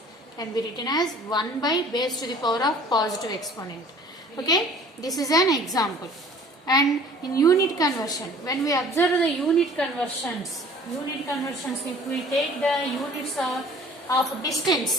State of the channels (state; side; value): normal; both; correlation 0.50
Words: can be written as 1 by base to the power of positive exponent. Okay, this is an example. And in unit conversion, when we observe the unit conversions, if we take the units of distance